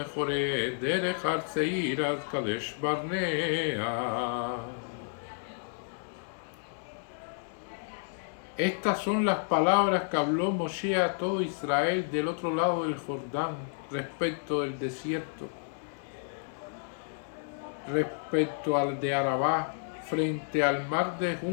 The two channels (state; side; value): silent; right; digital silence